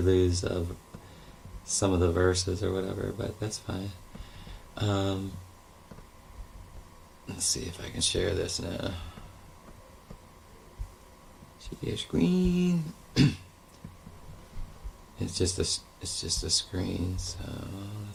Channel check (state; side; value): identical; both; correlation 1.00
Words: lose some of the verses or whatever. But that's fine. Let's see if I can share this now. Share your screen. It's just a screen. So